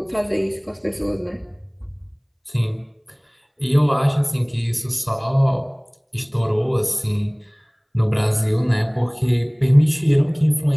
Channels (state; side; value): identical; both; correlation 1.00